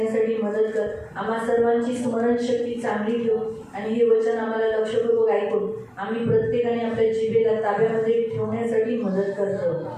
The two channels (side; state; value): both; identical; correlation 1.00